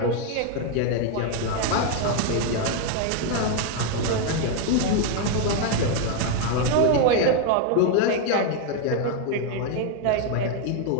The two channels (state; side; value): different; both; correlation 0.01